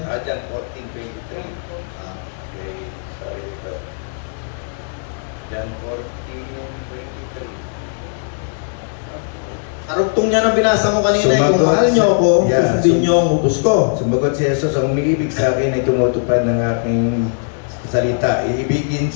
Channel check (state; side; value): silent; right; 63 dB below the other